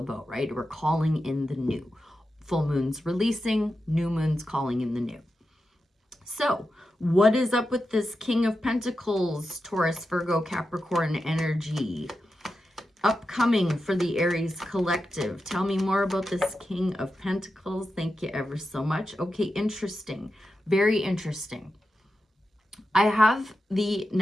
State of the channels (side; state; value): both; normal; correlation 0.90